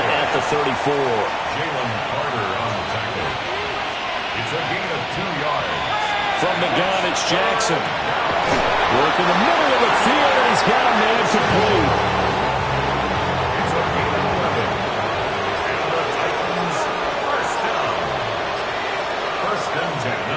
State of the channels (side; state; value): both; identical; correlation 1.00